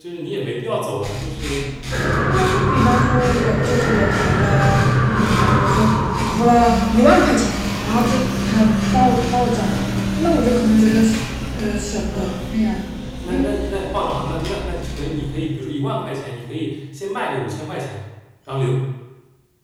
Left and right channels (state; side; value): identical; both; correlation 1.00